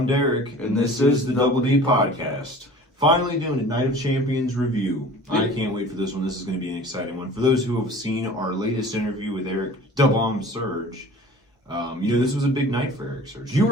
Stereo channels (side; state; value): both; normal; correlation 0.43